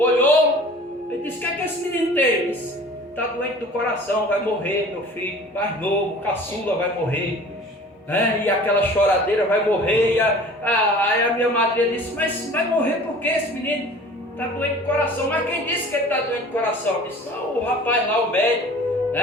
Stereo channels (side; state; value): both; normal; correlation 0.45